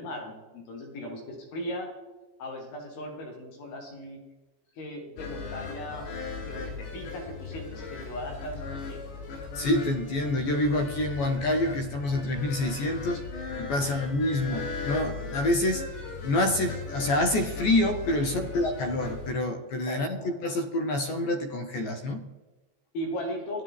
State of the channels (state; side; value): late; right; 14 ms